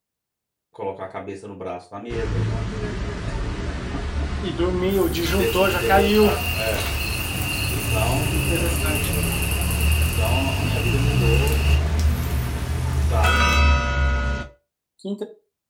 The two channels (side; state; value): both; identical; correlation 1.00